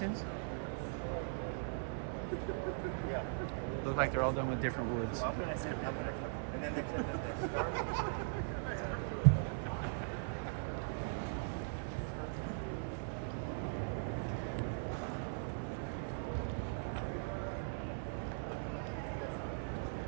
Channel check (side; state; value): left; silent; 51 dB below the other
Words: Look like they're all done with different woods.